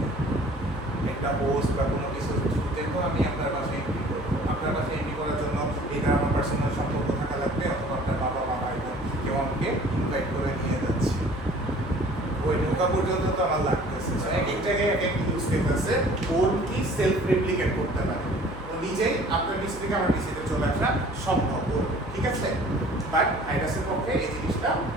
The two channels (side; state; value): left; noise; hum, 15 dB below the sound